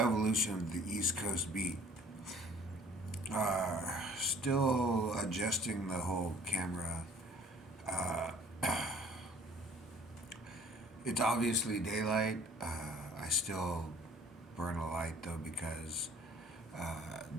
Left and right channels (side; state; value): both; normal; correlation 0.52